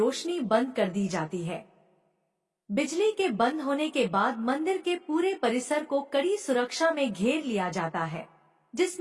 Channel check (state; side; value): identical; both; correlation 1.00